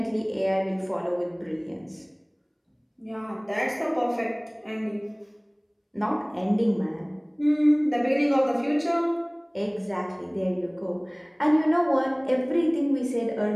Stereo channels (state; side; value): identical; both; correlation 1.00